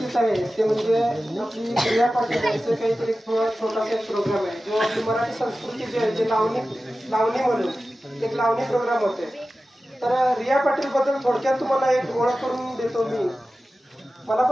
आहे ते म्हणजे आपली रिया पाटील यांचं काहीतरी छोटासा एक प्रोग्राम आहे जो आपली मराठी संस्कृती जी आहे जे लावणी म्हणून एक लावणी प्रोग्राम होते। तर रिया पाटील बद्दल थोडक्यात तुम्हाला एक ओळख करून देतो मी। मला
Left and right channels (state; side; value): normal; both; correlation 0.95